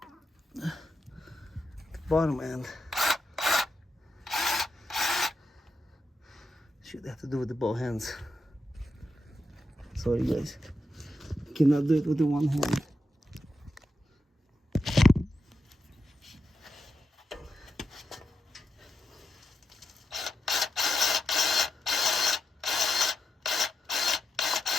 The bottom end. Should have to do with the both hands. Sorry guys. Cannot do it with the one hand.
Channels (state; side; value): normal; both; correlation 0.85